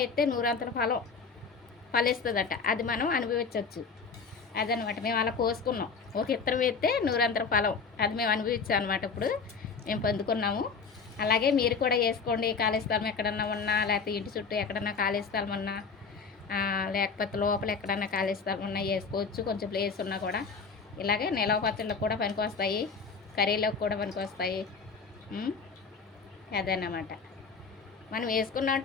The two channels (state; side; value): quieter; right; 5.2 dB